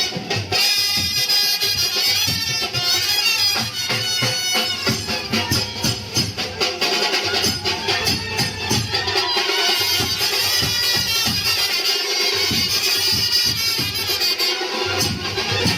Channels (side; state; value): both; identical; correlation 1.00